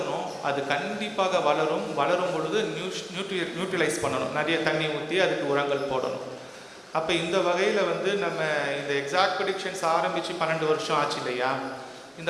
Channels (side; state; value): both; identical; correlation 1.00